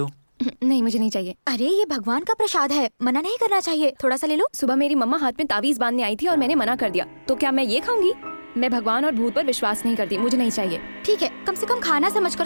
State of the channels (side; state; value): both; inverted; correlation -1.00